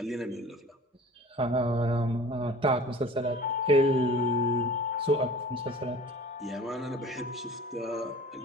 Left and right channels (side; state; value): both; normal; correlation 0.43